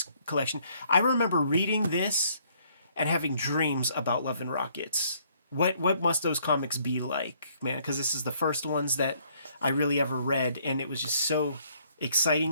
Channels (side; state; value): both; inverted; correlation -0.66